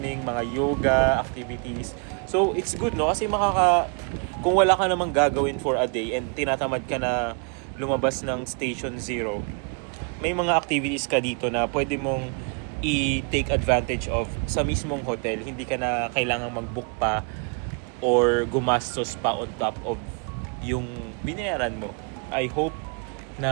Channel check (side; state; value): left; quieter; 39.0 dB